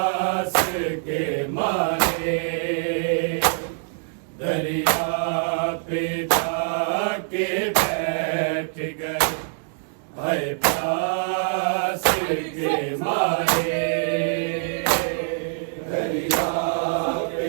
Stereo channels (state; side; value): silent; left; digital silence